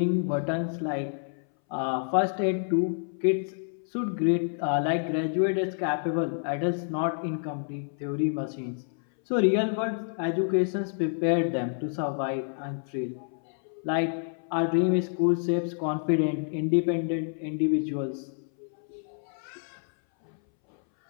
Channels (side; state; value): right; silent; 59 dB below the other